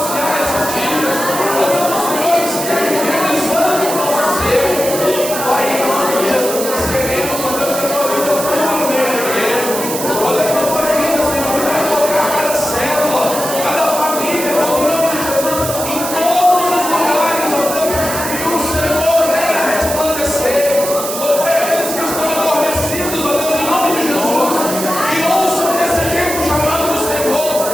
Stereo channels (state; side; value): noise; right; hiss, 6 dB below the sound